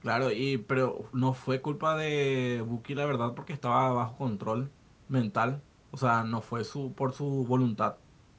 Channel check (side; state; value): both; identical; correlation 1.00